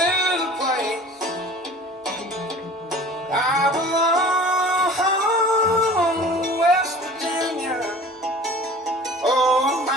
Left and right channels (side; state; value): both; normal; correlation 0.44